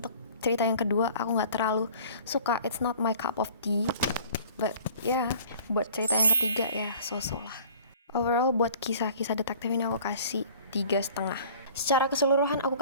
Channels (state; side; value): inverted; both; correlation -0.48